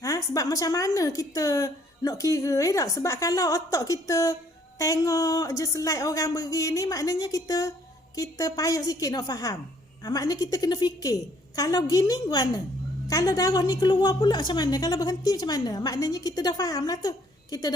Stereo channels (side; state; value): both; normal; correlation 0.64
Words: macam mana kita nak kira tak? Sebab kalau otak kita tengok je slide orang begini, maknanya kita payah sikit nak faham. Maknanya kita kena fikir. Kalau gini mana? Kalau darah ni keluar pula macam mana? Kalau berhenti macam mana? Maknanya kita dah faham lah tu. Kita